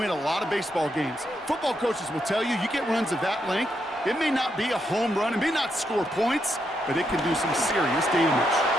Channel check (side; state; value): both; normal; correlation 0.80